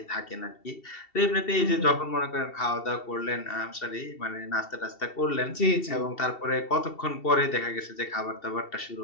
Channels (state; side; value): late; right; 2.7 ms